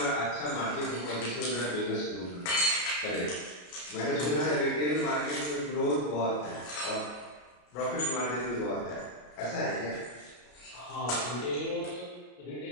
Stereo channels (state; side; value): late; right; 33 ms